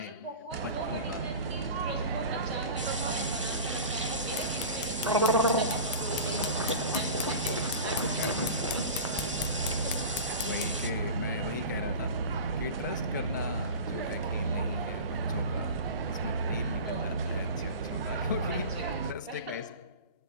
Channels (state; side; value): inverted; both; correlation -0.33